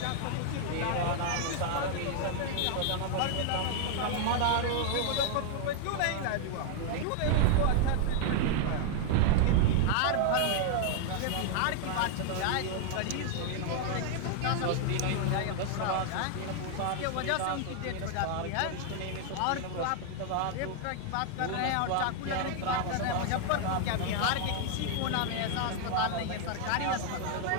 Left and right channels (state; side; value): different; both; correlation 0.00